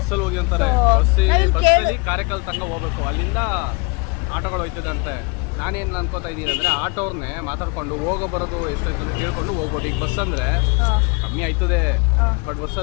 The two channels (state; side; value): quieter; right; 30.5 dB